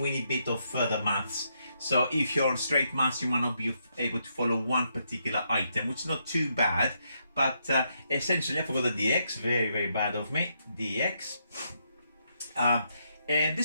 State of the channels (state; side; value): inverted; both; correlation -0.78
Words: bit of further maths. So if you're on straight maths, you might not be able to follow one particular item, which is not too bad. But essentially, I forgot the dx. Very, very bad of me. Dx. And